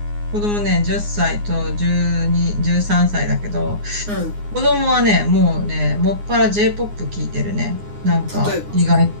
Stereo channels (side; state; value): left; late; 9.6 ms